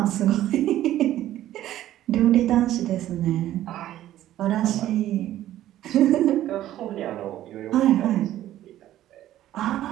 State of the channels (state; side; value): quieter; left; 13.2 dB